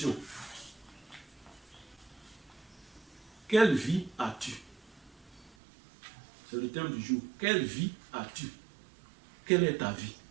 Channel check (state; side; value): drops out; left; at 5.6 s